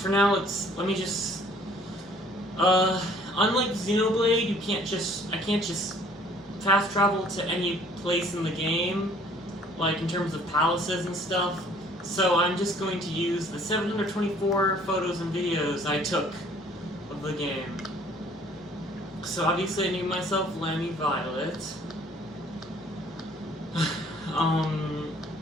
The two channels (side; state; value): both; normal; correlation 0.57